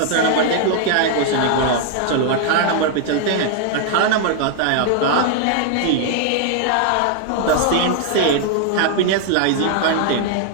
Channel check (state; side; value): different; both; correlation 0.00